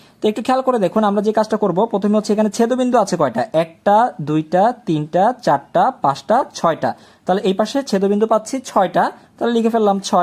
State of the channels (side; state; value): both; identical; correlation 1.00